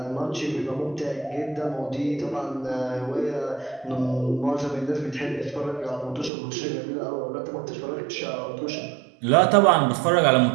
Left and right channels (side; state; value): left; drops out; at 6.3 s